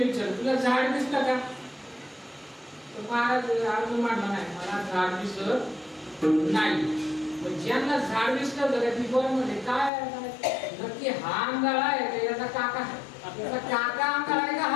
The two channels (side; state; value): right; drops out; at 9.9 s